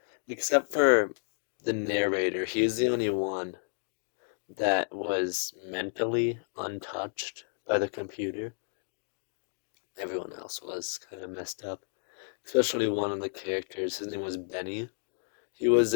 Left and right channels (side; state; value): right; silent; digital silence